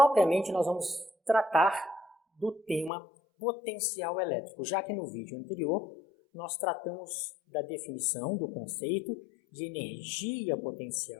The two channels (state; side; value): drops out; right; at 2.9 s